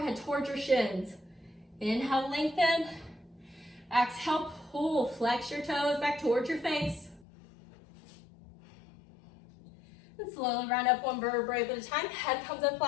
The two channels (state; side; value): drops out; right; at 7.2 s